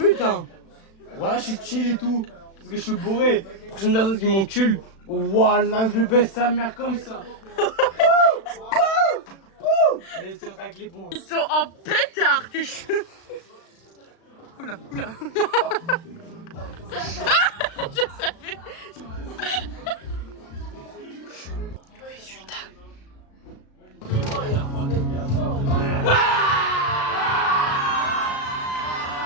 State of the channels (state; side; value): late; right; 36 ms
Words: hein. Voilà, je suis chill et tout. Parce que je suis bourré. Prochaine personne qui m'encule, voilà, je baisse sa mère comme ça. Mais c'est vrai que les ponts. Ils sont en pétard, tes cheveux. Oula, oula, oula. Je savais. Résultat.